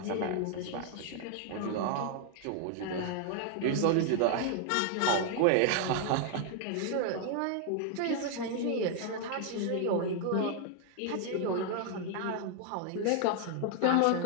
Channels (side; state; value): both; different; correlation 0.00